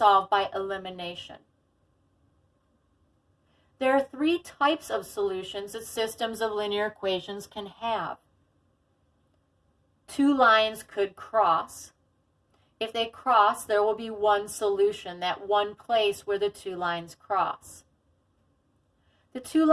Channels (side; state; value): both; identical; correlation 1.00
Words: by elimination. There are 3 types of solutions that systems of linear equations can have. 2 lines could cross. If they cross, there will be one solution, that one place where the 2 lines cross. The 2